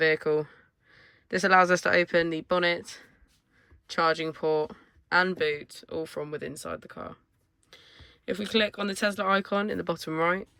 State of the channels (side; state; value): both; identical; correlation 1.00